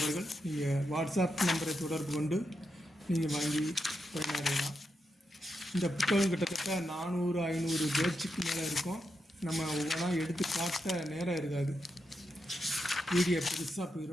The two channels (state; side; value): normal; both; correlation 0.85